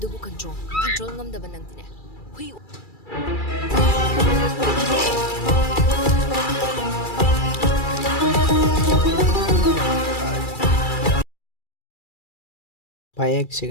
adubu control ngam da banang dine hui payak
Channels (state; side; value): late; right; 2.3 ms